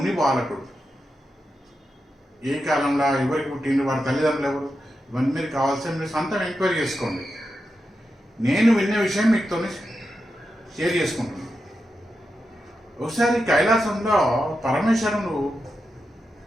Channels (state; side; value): normal; both; correlation 0.88